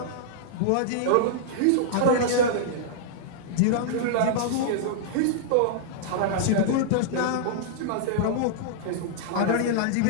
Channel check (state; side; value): different; both; correlation -0.02